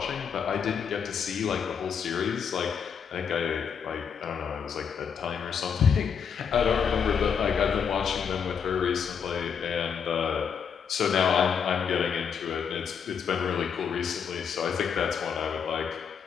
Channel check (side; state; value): right; quieter; 6.9 dB